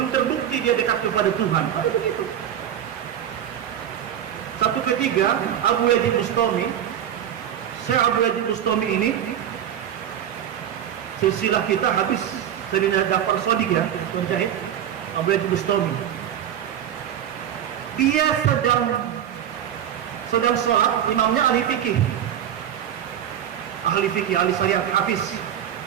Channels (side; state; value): left; quieter; 10.1 dB